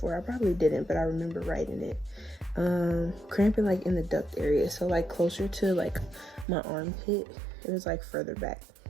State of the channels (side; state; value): left; drops out; at 6.5 s